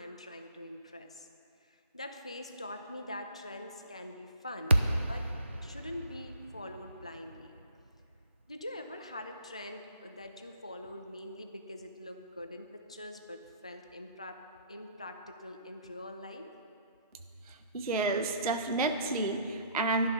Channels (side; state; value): both; inverted; correlation -0.54